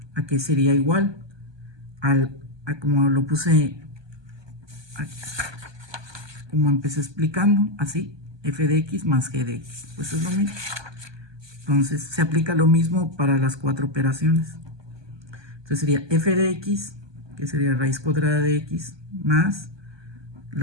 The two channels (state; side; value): late; left; 1.2 ms